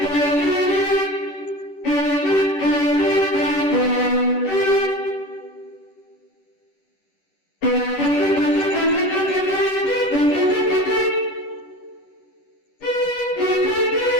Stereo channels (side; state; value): right; late; 10 ms